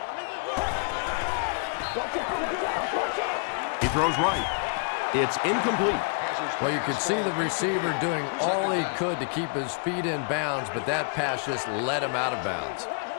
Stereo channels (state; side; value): quieter; right; 35.4 dB